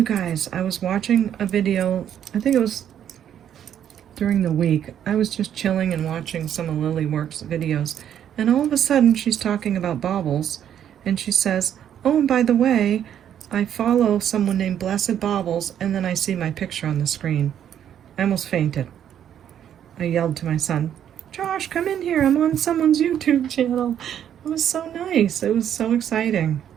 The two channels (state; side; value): quieter; left; 9.8 dB